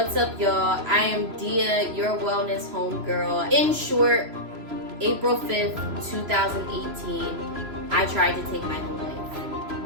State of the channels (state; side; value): late; left; 3.0 ms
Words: up, y'all? I am Dia, your wellness homegirl. In short, April 5th, 2018, I tried to take my own